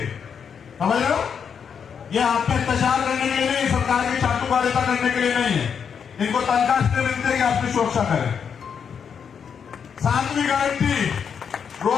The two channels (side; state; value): right; quieter; 7.0 dB